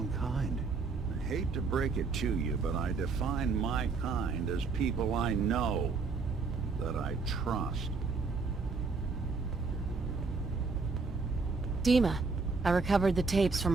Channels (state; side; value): quieter; left; 4.4 dB